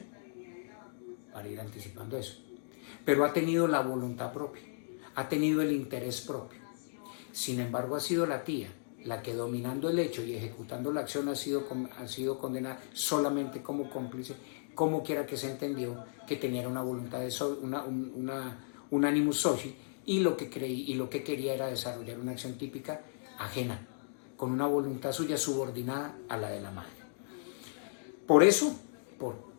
para ir anticipando eso, pero ha tenido la voluntad propia, ha tenido el interés propio. Sin embargo, ha sido la tía la que, dominando el hecho y ejecutando la acción, ha sido condenada solamente como cómplice, como quiera que se entendió que tenía una voluntad de un animus soci, y lo que quería era desarrollar una acción típica ajena, con una voluntad suya subordinada a la de la madre. Por eso, por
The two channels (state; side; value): silent; right; digital silence